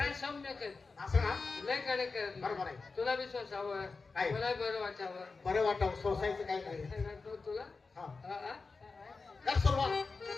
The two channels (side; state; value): right; quieter; 4.2 dB